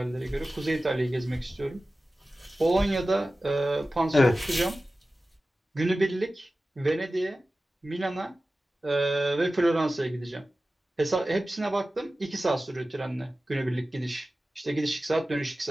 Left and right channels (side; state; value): both; normal; correlation 0.95